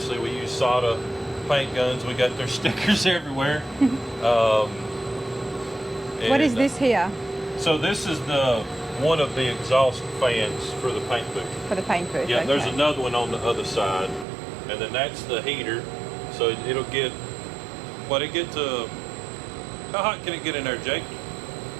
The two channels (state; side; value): drops out; left; at 14.2 s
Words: we use Sada paint guns. We got their stickers everywhere. What is this here? So this is one of the exhaust fans for the paint booth. For the paint booth? Yeah, okay. there's another one on the other side, and then that's the heater. So it'll get. It get to? How hot can it get in there, Jake?